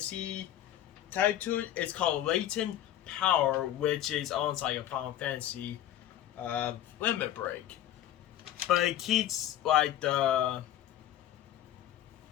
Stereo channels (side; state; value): right; quieter; 12.1 dB